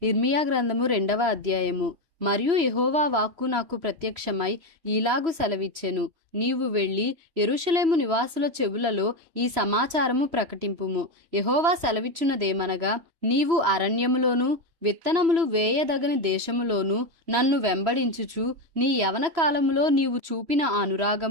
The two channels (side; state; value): left; late; 3.0 ms